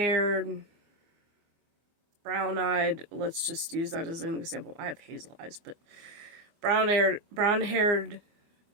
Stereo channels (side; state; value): left; late; 24 ms